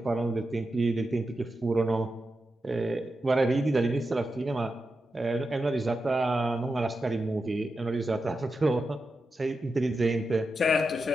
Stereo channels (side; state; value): both; normal; correlation 0.89